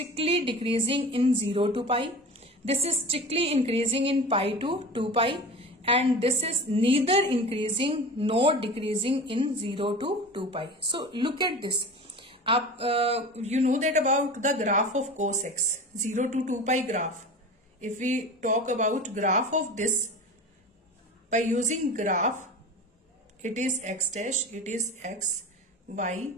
decreasing in 0 to pi. This is strictly increasing in pi to 2 pi. And this is neither increasing nor decreasing in 0 to 2 pi. So look at this. You know that about the graph of cos x, 0 to 2 pi graph. If we talk about graph of this, by using graph, it is x dash, it is x, y,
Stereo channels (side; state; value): both; normal; correlation 0.33